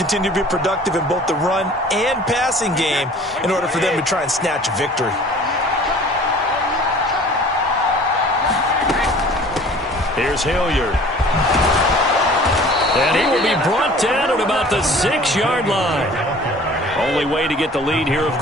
to be productive in both the run and passing game in order for them to try and snatch a victory. Here's Hilliard. And he will be brought down at about the 6-yard line. Only way to get the lead here, of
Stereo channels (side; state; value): both; normal; correlation 0.48